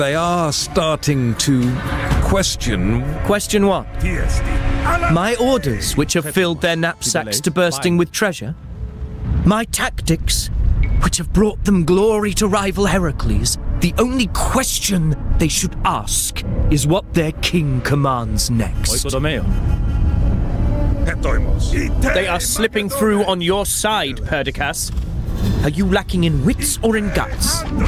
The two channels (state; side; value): identical; both; correlation 1.00